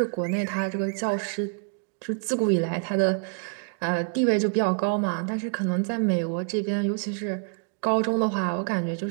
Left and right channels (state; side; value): quieter; left; 38.3 dB